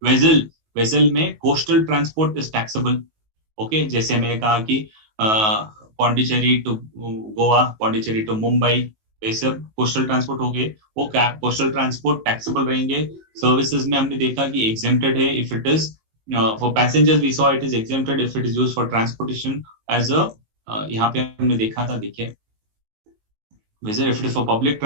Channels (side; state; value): left; late; 19 ms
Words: Vessel में coastal transport is taxable. Okay, जैसे मैंने कहा कि पौंडीचेरी टू गोवा, पौंडीचेरी टू मुंबई, ये सब कोस्टल ट्रांसपोर्ट हो गए. वो कोस्टल ट्रांसपोर्ट टैक्सेबल रहेंगे. सर्विसेज में हमने देखा कि एग्जेम्प्टेड है if it is for passengers. We saw it is exempted if it is used for transportation as a, यहाँ पे हमने देखा था, देखिए, whether if it is for public